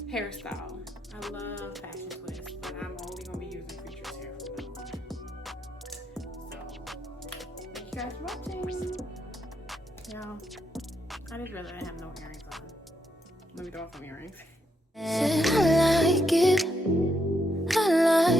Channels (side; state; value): both; normal; correlation 0.79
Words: hairstyle. I love fashion twists, but I'm only gonna be using Creatures hair from now on. So, thank you guys for watching. Yeah, I just realized I have no earrings on. Let me throw off some earrings. I like it. I